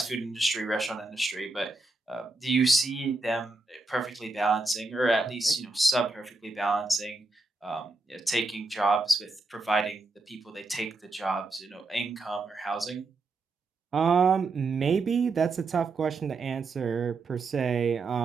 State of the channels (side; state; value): left; quieter; 3.4 dB